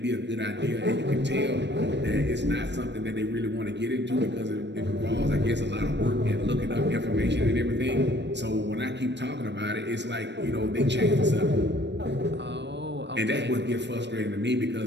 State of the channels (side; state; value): left; late; 0.51 ms